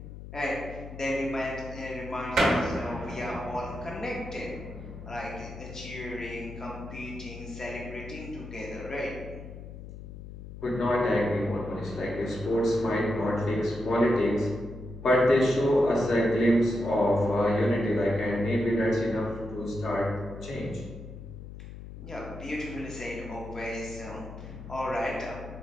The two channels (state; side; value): noise; left; hum, 12 dB below the sound